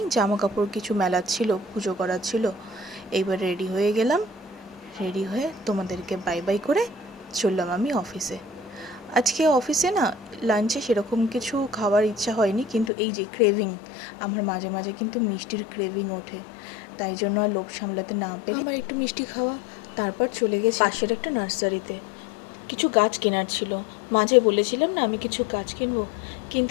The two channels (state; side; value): drops out; right; at 12.9 s